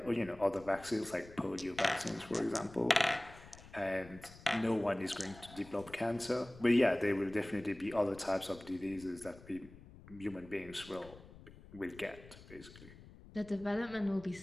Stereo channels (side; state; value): left; noise; rumble, 19 dB below the sound